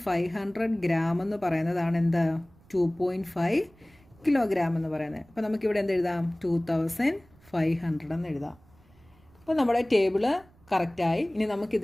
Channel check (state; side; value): noise; right; rumble, 29 dB below the sound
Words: ഗ്രാം എന്ന് പറയുന്നതാണ് എന്ത്? 2.5 കിലോഗ്രാം എന്ന് പറയുന്നത്. അപ്പോൾ നമുക്കിവിടെ എന്ത് എഴുതാം? 2500 എന്ന് എഴുതാം. അപ്പോൾ നമ്മുടെ ടേബിള് കറക്റ്റായി. ഇനി നമുക്ക്